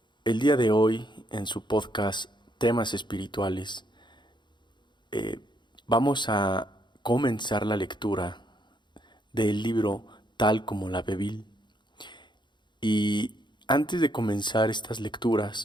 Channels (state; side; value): late; right; 0.22 ms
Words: El día de hoy, en su podcast Temas Espirituales, vamos a comenzar la lectura del libro Tal como la Bebil. Y antes de comenzar estas